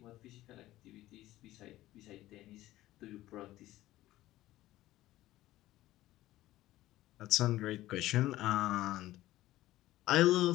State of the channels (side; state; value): right; quieter; 15.8 dB